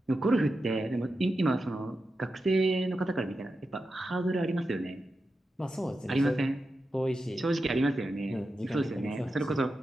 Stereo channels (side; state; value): both; normal; correlation 0.90